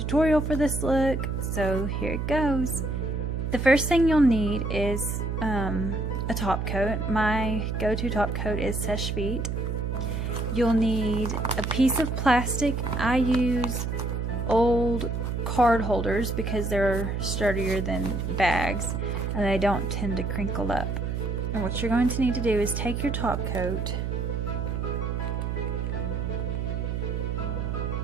for this look, so here it goes. The first thing you'll need is a top coat. My go-to top coat is Seche Vite. You'll need a piece of plastic. I use old card holders because they're sturdier than bags and they don't tend to crinkle up. And what you're going to need to do is take your top coat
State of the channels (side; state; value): right; noise; hum, 2 dB below the sound